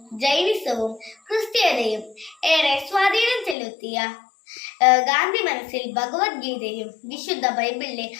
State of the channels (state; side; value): drops out; right; at 3.6 s